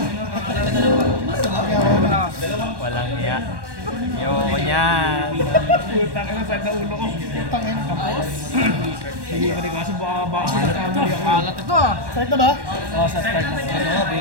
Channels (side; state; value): left; late; 1.1 ms